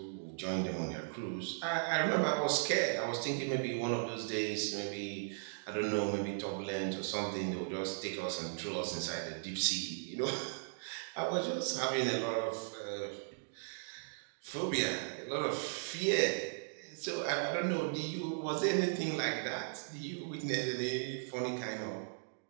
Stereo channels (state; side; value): silent; left; digital silence